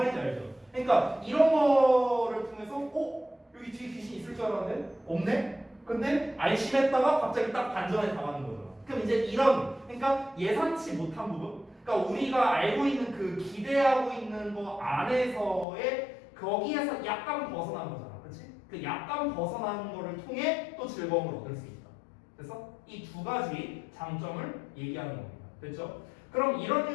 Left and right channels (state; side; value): drops out; right; at 15.7 s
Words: 알죠? 그러니까 이런 거를 통해서 여기 뒤에 귀신 있을 줄 알았는데 없네? 근데 안심했다가 갑자기 딱 반전에 당하는 거잖아. 그럼 이제 그러니까 예상치 못한 부분, 그러니까 우리가 알고 있는 그 기대하고 있는 거 안에서의 거기에서 약간 벗어난 거잖아. 그렇지? 그 약간 벗어나는 거를 통해 또 즐거움을 얻을 수 있다. 그래서 이 두 가지 장점을 얘기하는 겁니다. 됐죠? 그럼 이런